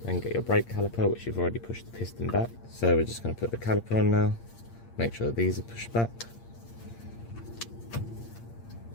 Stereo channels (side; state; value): right; late; 8.7 ms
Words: Then get your brake caliper, which you've already pushed the piston back. So we're just going to put the caliper on now, make sure these are pushed back.